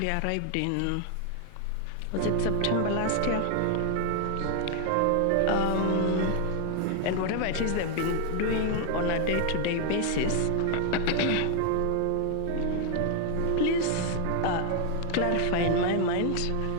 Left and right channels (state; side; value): different; both; correlation 0.00